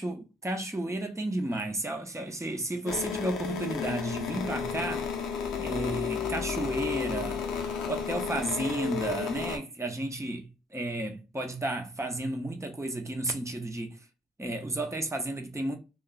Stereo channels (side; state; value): both; normal; correlation 0.61